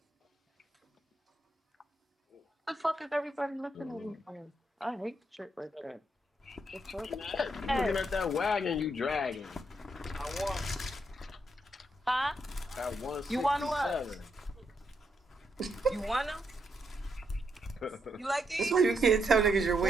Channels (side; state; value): both; normal; correlation 0.79